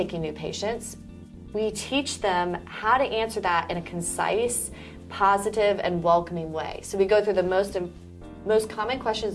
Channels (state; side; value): identical; both; correlation 1.00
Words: new patients? We teach them how to answer that in a concise, positive, and welcoming way. So we go through the most common questions